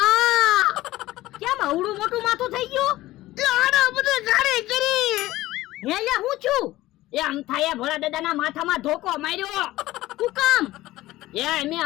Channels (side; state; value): right; quieter; 16.8 dB